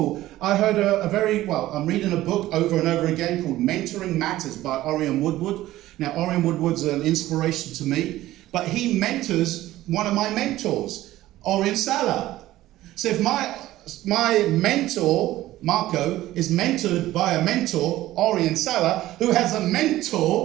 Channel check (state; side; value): quieter; left; 15.5 dB